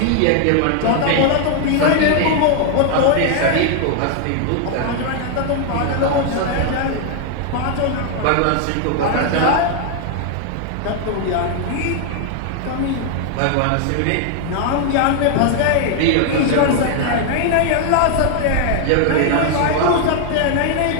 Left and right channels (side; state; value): both; different; correlation 0.00